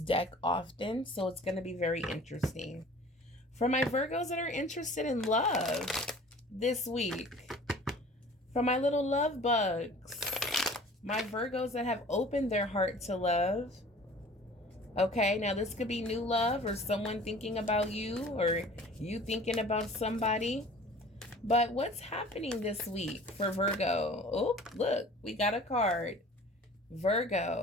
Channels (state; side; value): normal; both; correlation 0.46